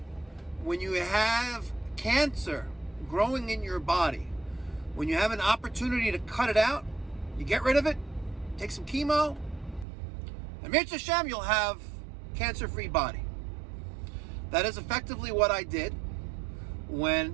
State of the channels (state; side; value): drops out; left; at 9.9 s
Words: when you have cancer growing in your body, when you have an opportunity to cut it out, you get rid of it, take some chemo, and Mitzvah Hashem, you'll have cancer-free body. That is effectively what I did